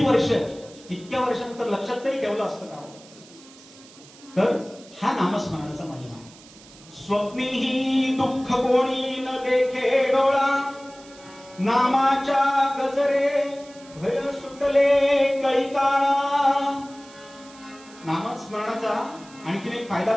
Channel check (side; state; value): right; noise; hiss, 22 dB below the sound